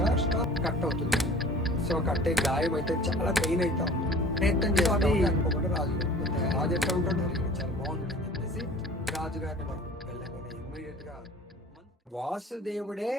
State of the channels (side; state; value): both; normal; correlation 0.45